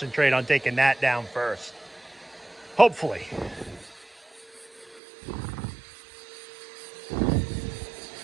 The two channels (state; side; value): drops out; left; at 5.0 s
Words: on taking that down first. Hopefully.